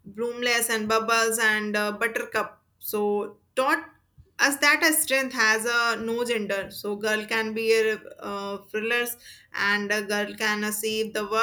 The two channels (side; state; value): both; identical; correlation 1.00